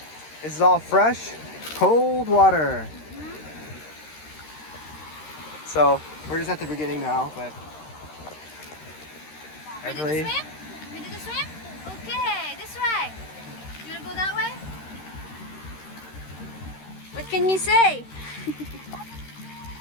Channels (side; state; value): right; late; 13 ms